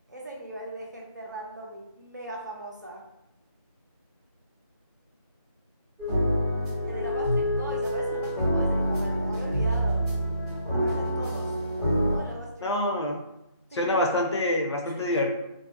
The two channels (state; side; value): inverted; both; correlation -0.65